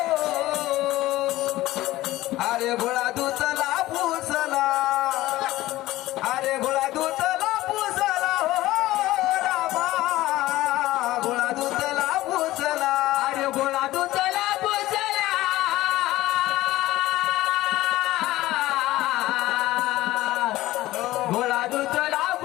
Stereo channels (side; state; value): right; quieter; 16.7 dB